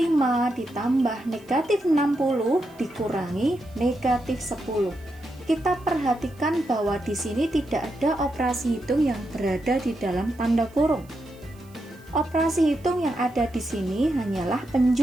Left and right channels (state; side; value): noise; right; hiss, 29 dB below the sound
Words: ditambah negatif 60 dikurangi negatif 10. Kita perhatikan bahwa di sini tidak ada operasi hitung yang berada di dalam tanda kurung. Operasi hitung yang ada di sini hanyalah